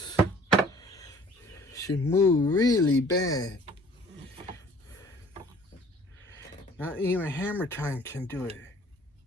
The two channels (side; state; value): both; normal; correlation 0.52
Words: She moved really bad. Not even hammer time can do it.